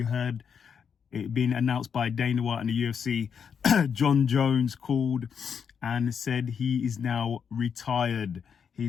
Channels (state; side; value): quieter; right; 7.0 dB